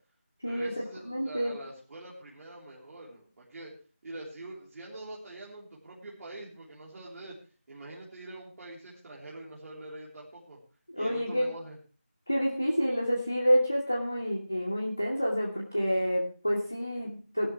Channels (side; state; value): both; inverted; correlation -0.96